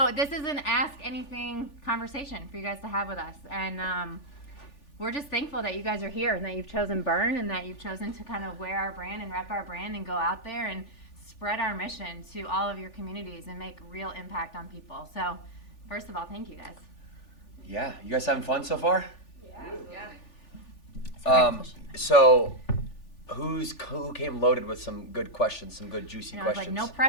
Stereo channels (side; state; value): right; late; 3.4 ms